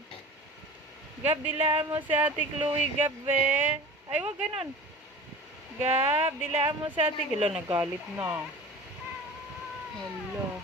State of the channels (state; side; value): normal; both; correlation 0.37